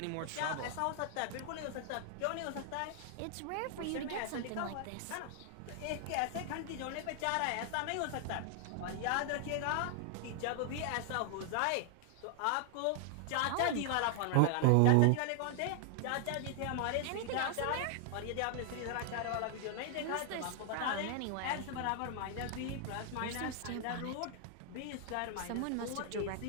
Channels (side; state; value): both; different; correlation 0.00